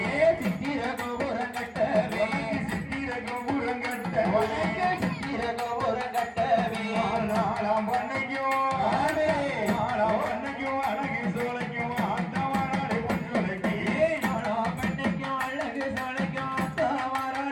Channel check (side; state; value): both; identical; correlation 1.00